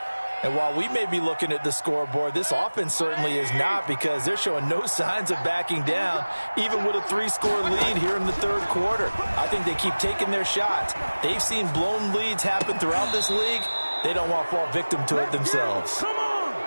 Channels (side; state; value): both; inverted; correlation -1.00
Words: And while we may be looking at the scoreboard, this offense certainly is not, because they're showing no signs of backing down, even with a 3-score lead here in the 3rd quarter. I think they keep taking their shots. They've seen blown leads happen throughout this league. They don't want to fall victim to it themselves. Come